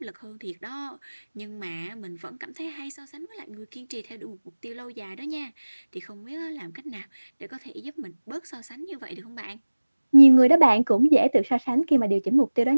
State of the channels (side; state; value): both; inverted; correlation -1.00